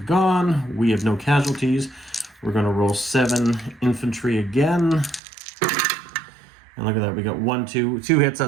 gone. We have no casualties. We're going to roll 7 infantry again. And look at that, we got 2 hits,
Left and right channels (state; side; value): drops out; left; at 5.2 s